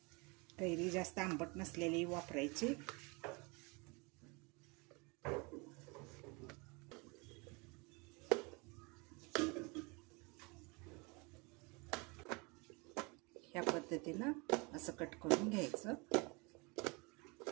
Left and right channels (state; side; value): quieter; left; 28.7 dB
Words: कैरी जास्त आंबट नसलेली वापरायची। ह्या पद्धतीने असं कट करून घ्यायचं।